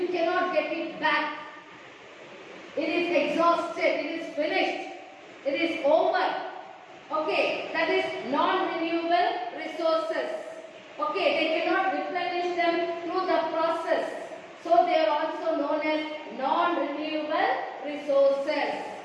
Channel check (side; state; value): both; identical; correlation 1.00